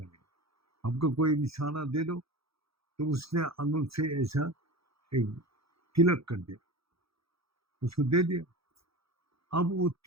हमको कोई निशाना दे दो। तो उसने अंगुल से ऐसा एक तिलक कर दिया, उसको दे दिया। अब वो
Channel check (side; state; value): left; late; 0.77 ms